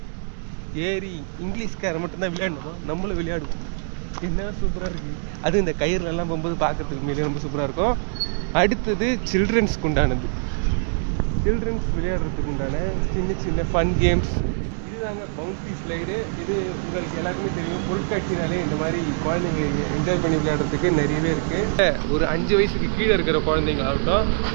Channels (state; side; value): silent; left; digital silence